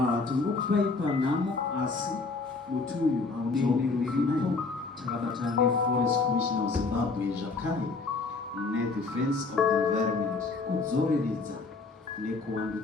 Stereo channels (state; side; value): quieter; right; 4.0 dB